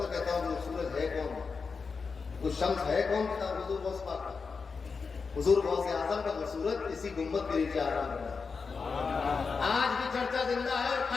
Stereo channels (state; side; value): quieter; right; 5.0 dB